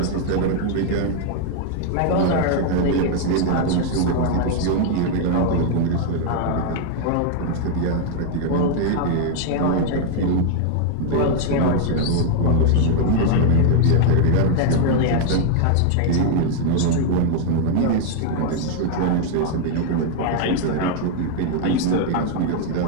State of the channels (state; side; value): different; both; correlation 0.00